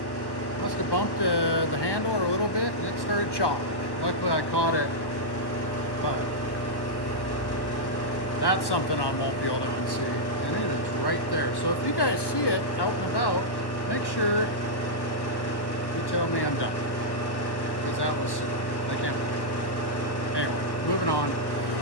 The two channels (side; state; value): right; late; 1.1 ms